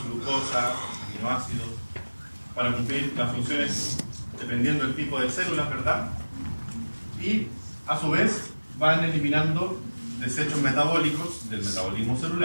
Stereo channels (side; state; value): both; inverted; correlation -1.00